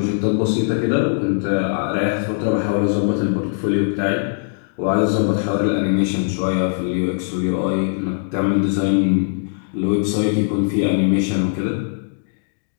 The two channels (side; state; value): right; silent; digital silence